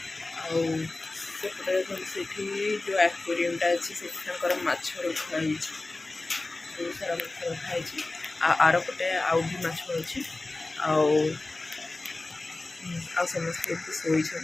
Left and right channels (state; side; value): quieter; right; 3.1 dB